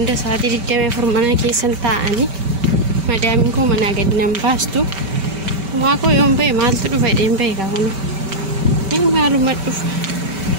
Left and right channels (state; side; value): late; left; 5.2 ms